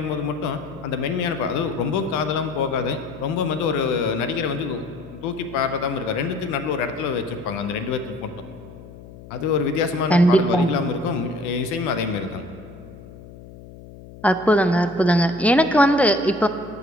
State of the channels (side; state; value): left; noise; hum, 18 dB below the sound